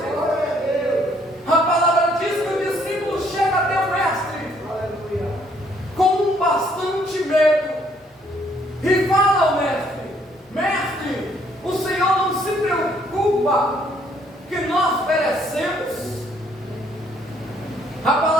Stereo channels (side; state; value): both; normal; correlation 0.65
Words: A palavra diz que o discípulo chega até o mestre com bastante medo e fala ao mestre: mestre, o Senhor não se preocupa que nós perecemos? A